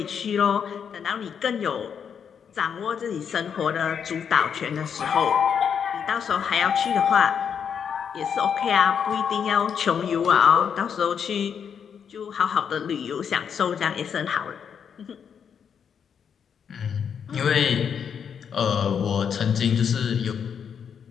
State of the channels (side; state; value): right; quieter; 7.4 dB